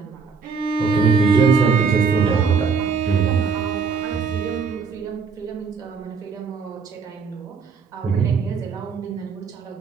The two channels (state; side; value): quieter; left; 5.4 dB